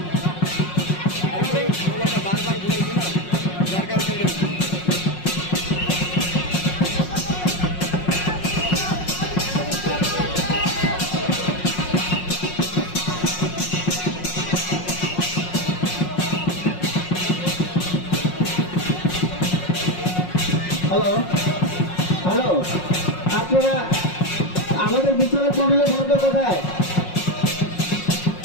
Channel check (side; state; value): right; late; 5.5 ms